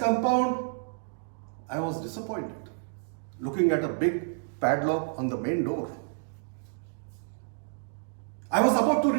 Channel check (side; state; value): left; silent; digital silence